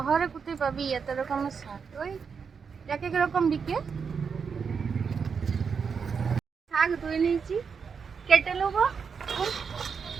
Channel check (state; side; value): quieter; left; 6.0 dB